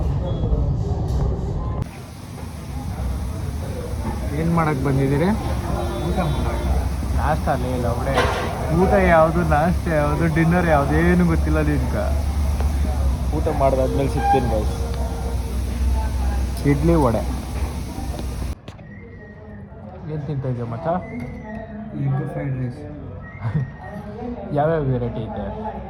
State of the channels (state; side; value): identical; both; correlation 1.00